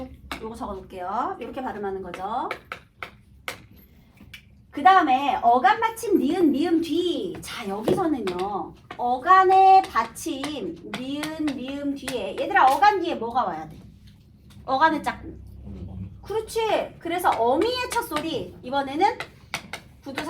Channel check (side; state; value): both; identical; correlation 1.00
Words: 요거 적어놓을게요. 이렇게 발음하는 거죠. 그 다음에 어간 받침 니은 미음 뒤. 자 여기서는요 어간의 받침 니은 미음 뒤에 얘들아 어간 뒤에 뭐가 와야 돼? 어간의 짝꿍. 그렇지. 그래서 어미의 첫 소리 이번에는